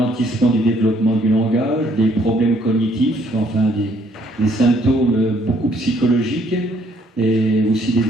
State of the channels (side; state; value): both; normal; correlation 0.66